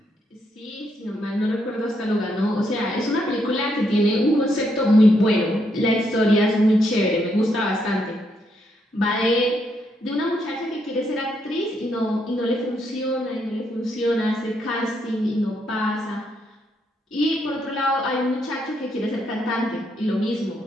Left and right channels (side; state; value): both; normal; correlation 0.77